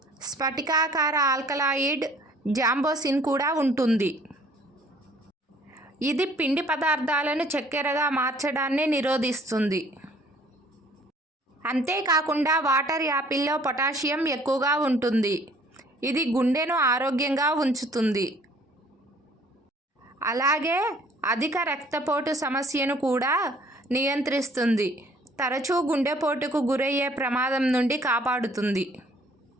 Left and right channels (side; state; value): both; normal; correlation 0.57